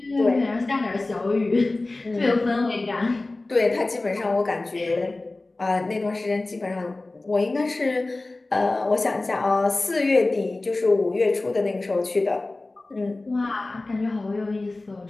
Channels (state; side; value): quieter; right; 3.1 dB